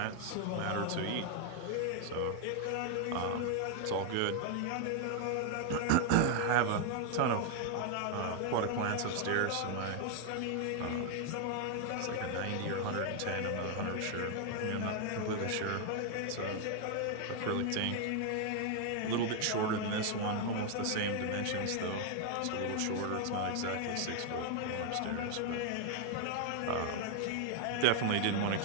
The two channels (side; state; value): both; different; correlation 0.00